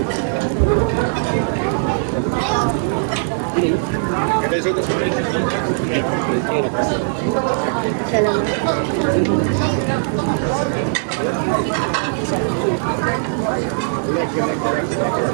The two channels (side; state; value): left; silent; digital silence